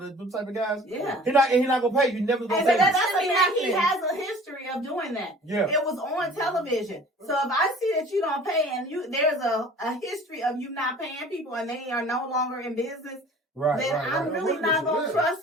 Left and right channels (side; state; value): both; normal; correlation 0.47